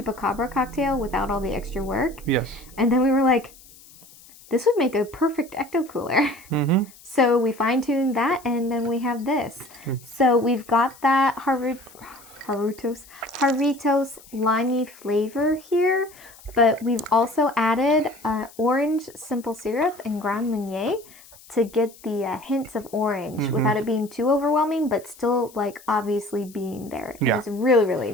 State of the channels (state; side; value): noise; left; hiss, 23 dB below the sound